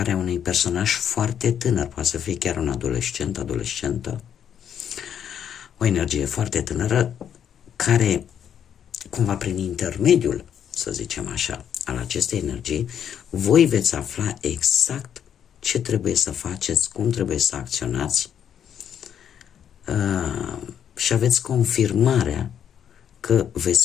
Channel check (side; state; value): right; quieter; 9.0 dB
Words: unui personaj foarte tânăr, poate să fie chiar un adolescent, adolescentă, o energie foarte tânără, care, cumva prin intermediul, să zicem așa, al acestei energii, voi veți afla exact ce trebuie să faceți, cum trebuie să acționați și aveți confirmarea că